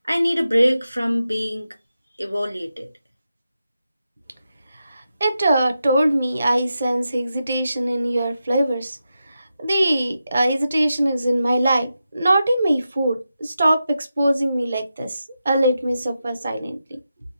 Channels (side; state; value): both; inverted; correlation -0.89